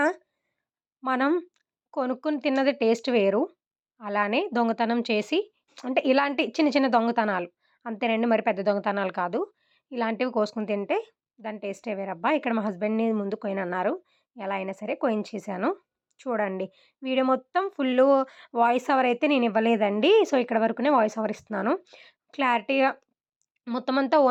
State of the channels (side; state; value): both; identical; correlation 1.00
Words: మనం కొనుక్కొని తిన్నది టేస్ట్ వేరు. అలానే దొంగతనం చేసి అంటే ఇలాంటి చిన్న చిన్న దొంగతనాలు అంతేనండి. మరి పెద్ద దొంగతనాలు కాదు. ఇలాంటివి కోసుకొని తింటే దాని టేస్టే వేరబ్బా! ఇక్కడ మా హస్బెండ్‌ని ముందు కొయనన్నారు. ఎలా అయినా సరే కోయించేశాను. చూడండి. వీడియో మొత్తం ఫుల్లు వాయిస్ ఓవర్ అయితే నేనివ్వలేదండి. సో, ఇక్కడ వరకునే వాయిస్ ఓవర్ ఇస్తున్నాను. క్లారిటీగా మొత్తం అంతా